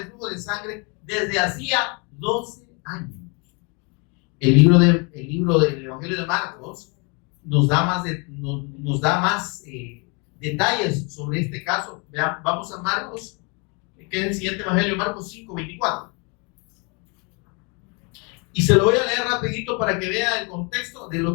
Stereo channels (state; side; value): quieter; right; 32.8 dB